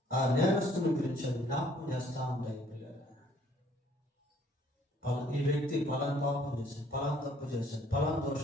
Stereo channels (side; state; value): both; normal; correlation 0.61